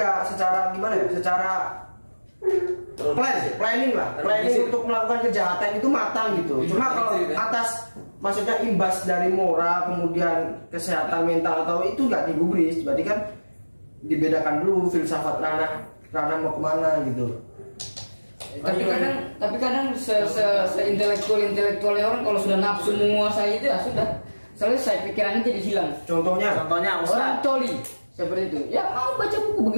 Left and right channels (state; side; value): inverted; both; correlation -1.00